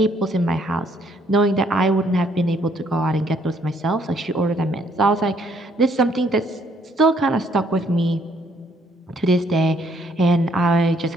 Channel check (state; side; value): normal; both; correlation 0.67